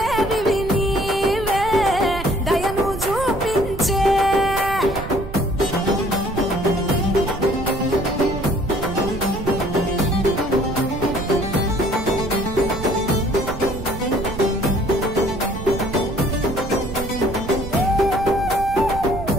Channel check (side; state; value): right; noise; rumble, 9 dB below the sound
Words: నీవే దయను చూపించే